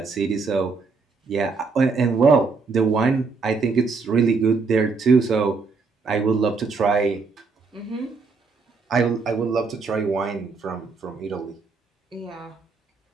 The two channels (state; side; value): quieter; left; 4.4 dB